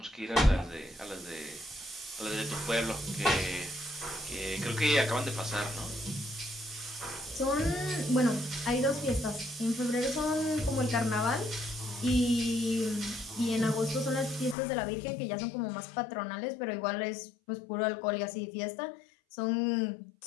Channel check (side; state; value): right; drops out; at 14.6 s